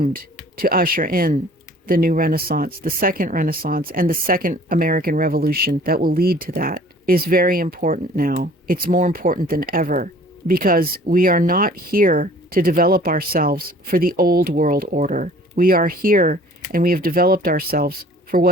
to usher in the new Renaissance, the second Renaissance, and the second American Revolution that will lead to that, is very important now. It's more important than ever, because we are not here to develop ourselves for the old world order. We are here and we have developed ourselves for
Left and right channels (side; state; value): both; normal; correlation 0.51